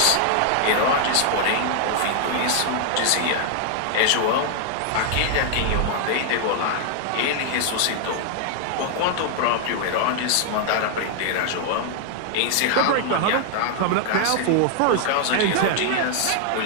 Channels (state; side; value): different; both; correlation 0.00